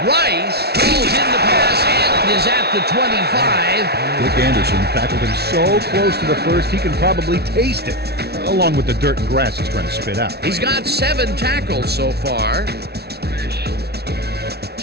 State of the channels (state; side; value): late; left; 0.47 ms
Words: Rice falls in the pass and is at the 25. Dick Anderson tackled him so close to the first he can probably taste it, along with the dirt and grass he's trying to spit out. He's got 7 tackles so far.